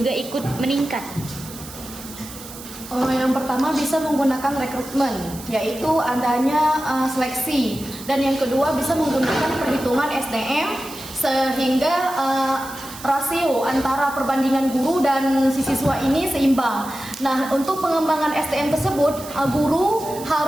ikut meningkat? Yang pertama bisa menggunakan rekrutmen, yaitu adanya seleksi. Dan yang kedua bisa menggunakan perhitungan SDM sehingga rasio antara perbandingan guru dan si siswa ini seimbang. Nah, untuk pengembangan SDM tersebut, guru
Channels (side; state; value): right; noise; hiss, 15 dB below the sound